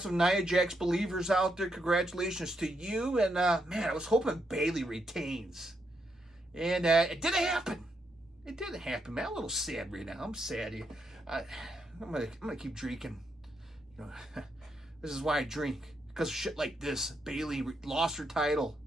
some Nia Jax believers out there. Congratulations to you. And, man, I was hoping Bayley retains. And it didn't happen. It didn't happen, man. I'm a little sad right now. I'm sad. I'm gonna keep drinking. This is why I drink. Because of shit like this. Bayley lost her title.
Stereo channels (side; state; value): both; normal; correlation 0.80